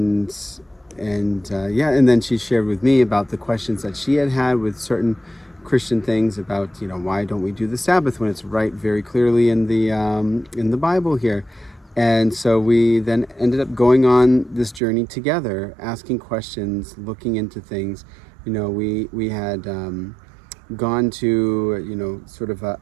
then she shared with me about the questions that she had with certain Christian things about, why don't we do the Sabbath when it's right very clearly in the Bible here. And so we then ended up going on this journey together, asking questions, looking into things. We had gone to, sort of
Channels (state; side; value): drops out; left; at 14.8 s